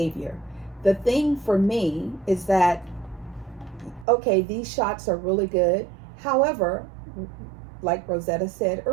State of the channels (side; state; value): left; drops out; at 4.0 s